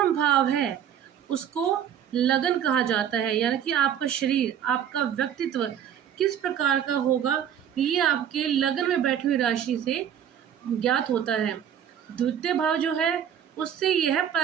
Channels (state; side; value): quieter; left; 9.3 dB